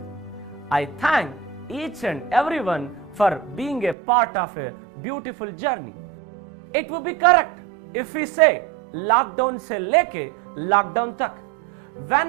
I thank each and everyone for being a part of a beautiful journey. It would be correct if we say lockdown se leke lockdown tak.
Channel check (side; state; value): left; drops out; at 4.0 s